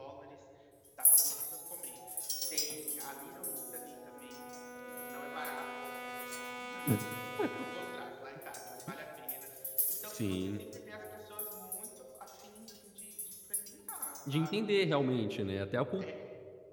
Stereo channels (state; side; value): identical; both; correlation 1.00